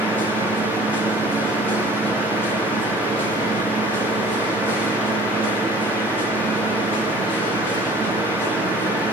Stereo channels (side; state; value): both; normal; correlation 0.48